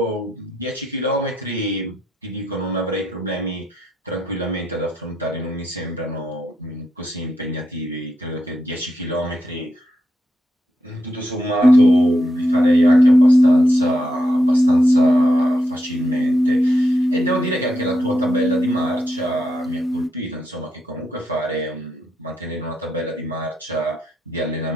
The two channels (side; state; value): both; normal; correlation 0.82